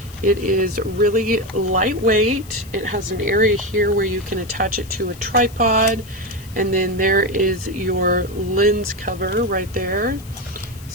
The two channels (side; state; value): left; noise; hiss, 21 dB below the sound